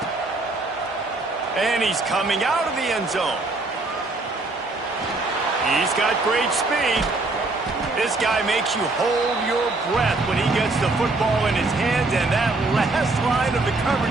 And he's coming out of the end zone. He's got great speed. This guy makes you hold your breath when he gets the football in his hands, and that last line of the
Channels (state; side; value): quieter; left; 3.2 dB